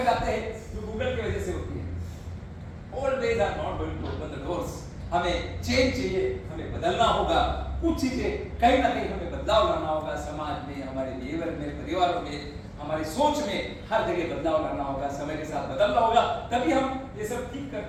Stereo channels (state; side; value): identical; both; correlation 1.00